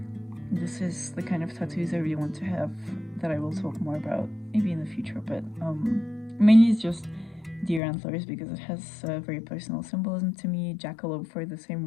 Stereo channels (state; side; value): drops out; right; at 7.8 s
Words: This is the kind of tattoos I really want to have that I will talk more about maybe in the future, but mainly it's just deer antlers because it has very personal symbolism to me, jackalope for the same